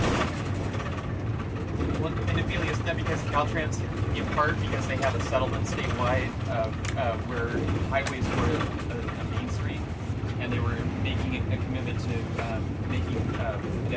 Well, and Ophelia, is that because Caltrans, in part because they have a settlement statewide where highways were a main street, and they were making a commitment to making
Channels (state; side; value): identical; both; correlation 1.00